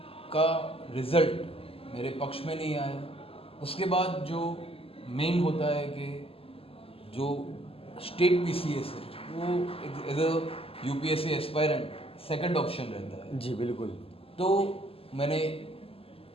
का रिज़ल्ट मेरे पक्ष में नहीं आया। उसके बाद जो मेन होता है कि जो स्टेट पीसीएस है वो as a UPSC aspirant second option रहता है। जी बिल्कुल। तो मैंने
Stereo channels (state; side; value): late; right; 0.28 ms